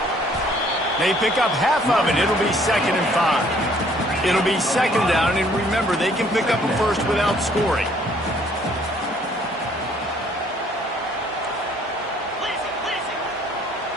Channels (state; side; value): normal; both; correlation 0.61